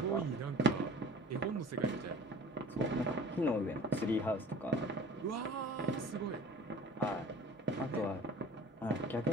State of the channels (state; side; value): normal; both; correlation 0.45